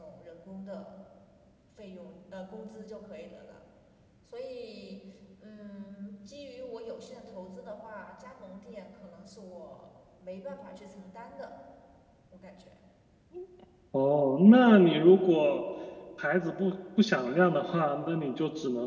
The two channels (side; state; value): both; identical; correlation 1.00